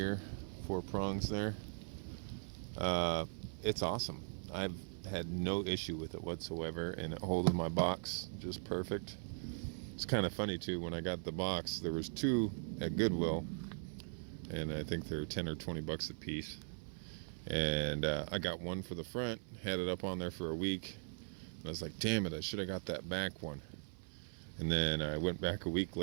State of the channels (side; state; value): left; silent; 51 dB below the other